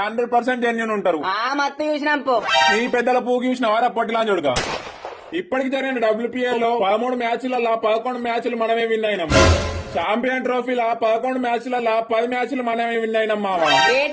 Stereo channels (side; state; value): both; identical; correlation 1.00